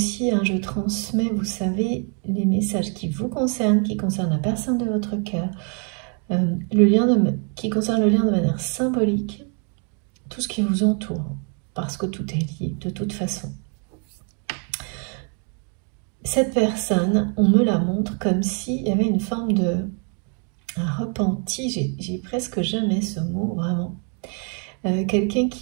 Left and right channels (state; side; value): quieter; left; 39.7 dB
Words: je transmets, vous savez, les messages qui vous concernent, qui concernent la personne de votre cœur, qui concerne le lien de manière symbolique, tout ce qui vous entoure, parce que tout est lié de toute façon. Cette personne, on me la montre comme s'il y avait une forme de repenti, j'ai presque jamais ce mot, vraiment. Quelqu'un